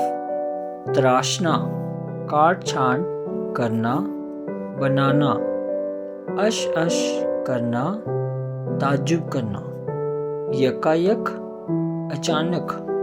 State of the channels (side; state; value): both; identical; correlation 1.00